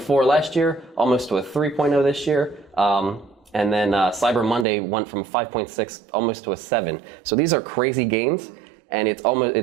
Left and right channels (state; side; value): drops out; left; at 4.7 s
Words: last year, almost to a 3.0 this year. And then Cyber Monday went from 5.6 almost to a 7. So these are crazy gains, and it's